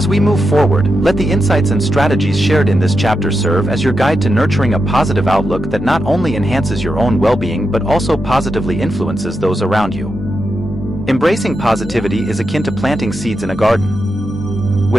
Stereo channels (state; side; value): normal; both; correlation 0.87